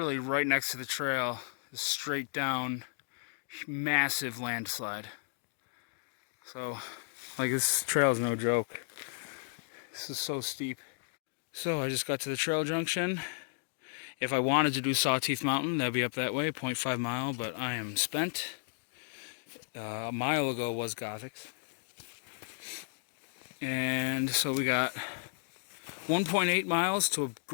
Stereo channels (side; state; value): right; silent; digital silence